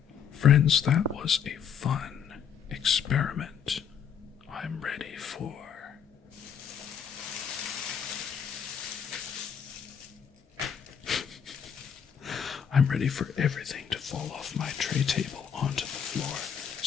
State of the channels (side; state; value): right; quieter; 7.8 dB